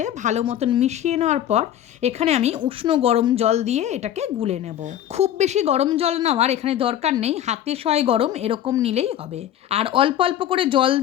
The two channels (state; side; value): quieter; right; 11.2 dB